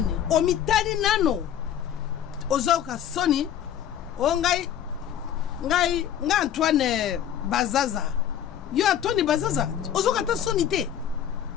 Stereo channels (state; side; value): quieter; right; 10.0 dB